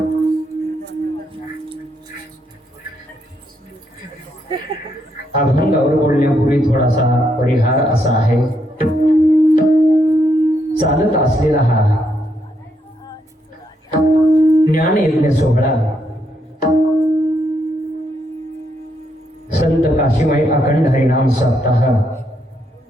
अभंगावर बोलण्यापूर्वी थोडासा परिहार असा आहे. चालत असलेला हा ज्ञान यज्ञ सोहळा संत काशीमाई अखंड हरिनाम सप्ताह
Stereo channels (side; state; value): both; normal; correlation 0.77